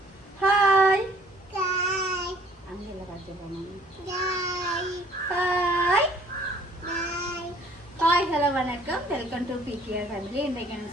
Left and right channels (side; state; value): both; normal; correlation 0.57